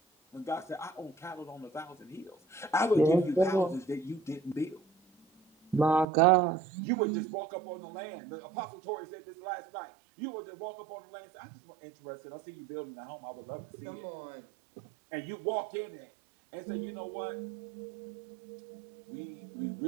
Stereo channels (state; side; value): drops out; left; at 6.1 s